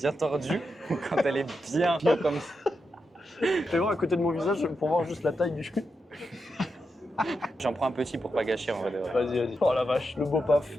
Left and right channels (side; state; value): both; normal; correlation 0.86